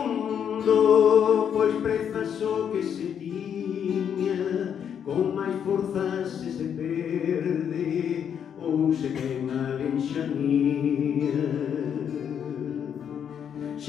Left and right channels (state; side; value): quieter; right; 8.3 dB